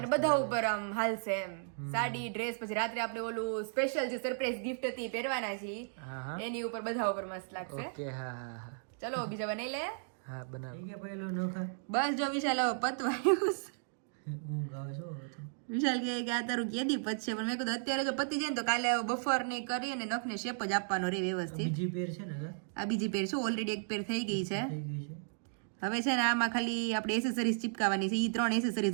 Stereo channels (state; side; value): silent; left; digital silence